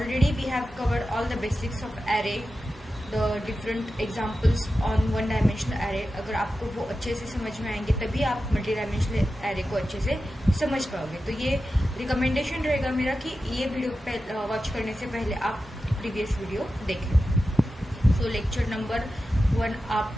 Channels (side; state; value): both; normal; correlation 0.92